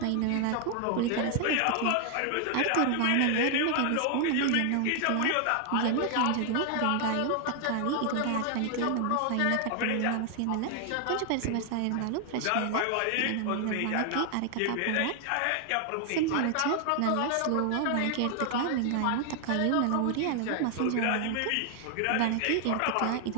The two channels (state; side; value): different; both; correlation 0.00